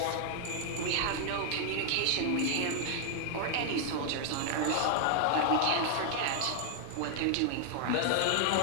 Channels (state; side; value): different; both; correlation 0.00